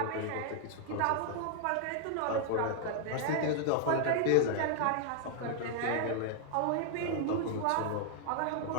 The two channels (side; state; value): both; different; correlation -0.01